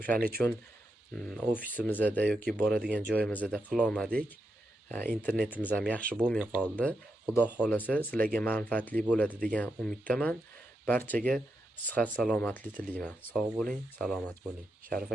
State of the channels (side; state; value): both; normal; correlation 0.85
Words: uchun ofisimizda yoki boradigan joyimizda qila olmadik. Internetimiz ham yaxshi bo'lmay qoldi. Xudo xolasa sizlarga manfaatli bo'ladi degan umiddaman. Barchaga sihat salomatlik tilayman. Sog' bo'ling, salomat bo'ling. Sharif